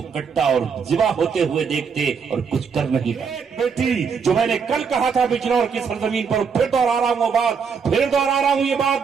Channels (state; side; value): quieter; left; 6.1 dB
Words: کٹا اور ذبح ہوتے ہوئے دیکھتے اور کچھ کر نہیں پاتے. بیٹی جو میں نے کل کہا تھا بجنور کی سرزمین پر، پھر دوہرا رہا ہوں وہ بات، پھر دوہرا رہا ہوں یہ